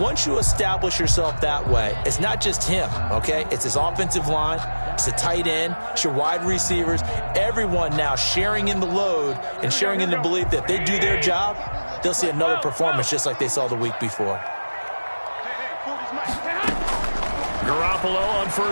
you establish yourself that way, it's not just him, okay? It's his offensive line. It's the tight end. It's your wide receivers. Everyone now sharing in the load and sharing in the belief that if they do their job, they'll see another performance just like they saw the week before. Garoppolo on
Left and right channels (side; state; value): both; inverted; correlation -1.00